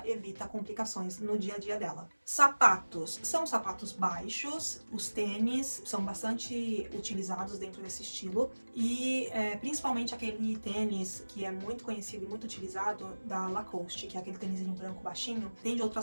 evita complicações no dia a dia dela. Sapatos, são sapatos baixos, os tênis são bastante utilizados dentro desse estilo e principalmente aquele tênis que é muito conhecido e muito utilizado da Lacoste, que é aquele tênisinho branco baixinho. Tem de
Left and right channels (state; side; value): inverted; both; correlation -1.00